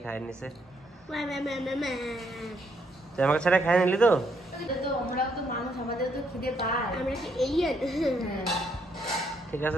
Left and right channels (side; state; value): both; normal; correlation 0.73